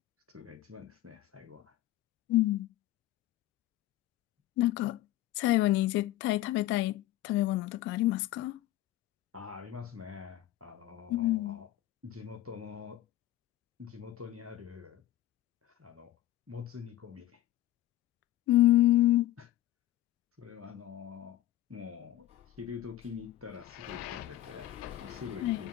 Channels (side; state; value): right; quieter; 14.8 dB